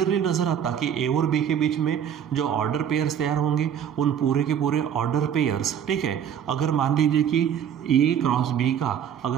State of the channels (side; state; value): left; quieter; 8.9 dB